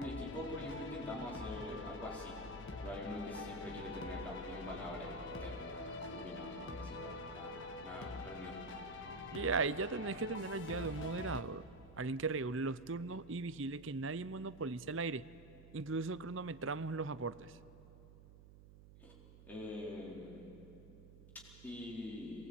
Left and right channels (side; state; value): right; noise; hum, 18 dB below the sound